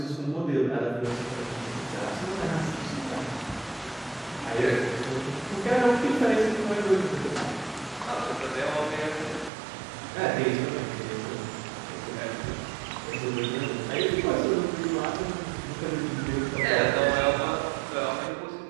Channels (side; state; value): left; drops out; at 9.5 s